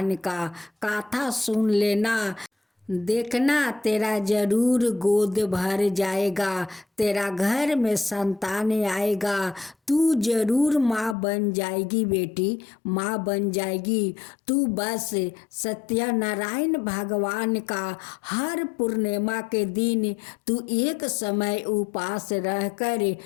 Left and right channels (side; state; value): right; drops out; at 11.2 s